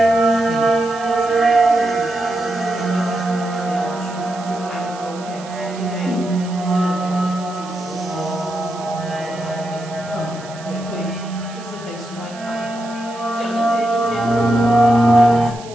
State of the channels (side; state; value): right; noise; hiss, 19 dB below the sound